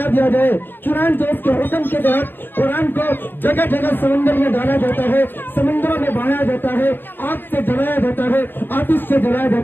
دیا جائے. چنانچہ اس کے حکم کے تحت قرآن کو جگہ جگہ سمندر میں ڈالا جاتا ہے, سمندروں میں بہایا جاتا ہے, آگ سے جلایا جاتا ہے, آتش سے جلایا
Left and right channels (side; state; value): right; late; 0.095 ms